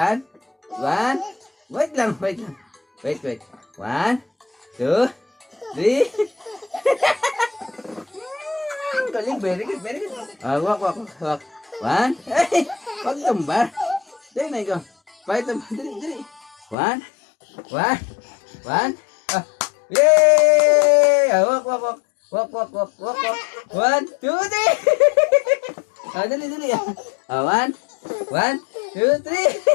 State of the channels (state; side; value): drops out; right; at 16.8 s